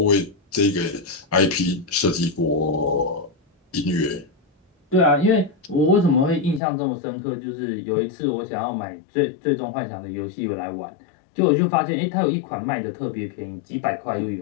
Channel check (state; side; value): drops out; right; at 6.6 s